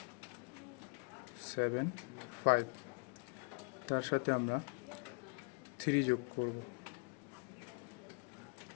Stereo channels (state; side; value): quieter; right; 36.4 dB